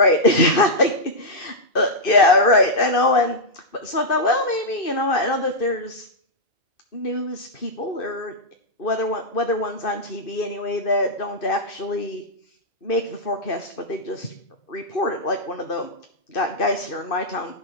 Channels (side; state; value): right; late; 2.5 ms